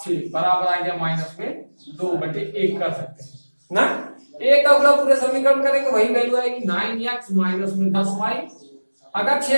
6 बराबर आ गया माइनस में 2/1 कर सकते हैं ना। एक का गुणा पूरे समीकरण करेंगे वही वैल्यू आएगी 9x माइनस में 10y। अगर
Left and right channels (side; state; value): both; inverted; correlation -1.00